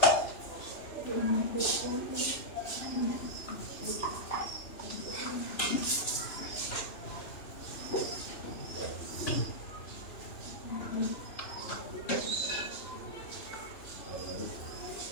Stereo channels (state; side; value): late; right; 2.9 ms